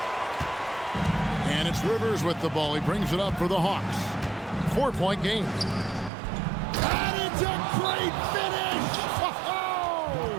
And it's Rivers with the ball. He brings it up for the Hawks. 4-point game. And it's a great finish!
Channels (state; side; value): drops out; left; at 6.1 s